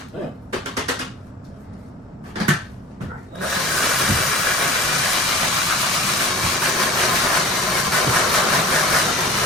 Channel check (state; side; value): normal; both; correlation 0.40